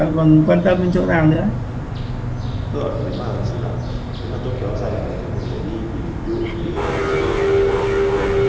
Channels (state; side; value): identical; both; correlation 1.00